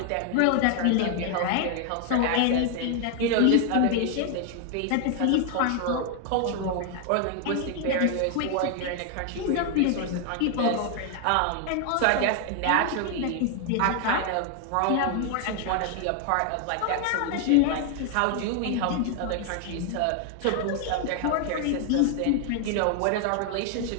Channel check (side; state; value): both; different; correlation 0.00